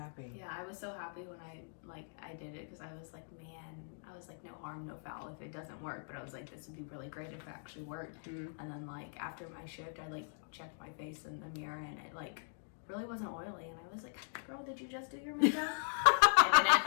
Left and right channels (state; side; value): silent; right; digital silence